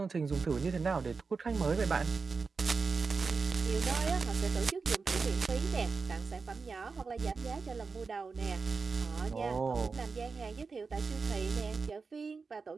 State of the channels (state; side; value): quieter; left; 4.7 dB